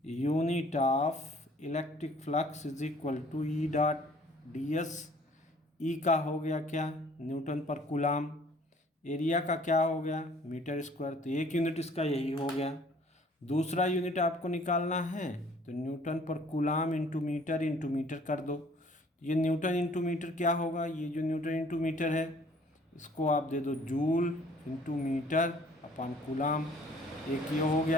unit of electric flux is equal to E dot D S. E का हो गया क्या? न्यूटन पर कूलाम। एरिया का क्या हो गया? Metre square. तो एक यूनिट इसका यही हो गया। दूसरा यूनिट आपको निकालना है तो न्यूटन पर कूलाम इंटू मीटर कर दो। ये न्यूटन इंटू मीटर क्या होगा? ये जो न्यूटन इंटू मीटर है इसको आप दे दो joule into metre upon coulomb. एक ये हो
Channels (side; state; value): both; normal; correlation 0.56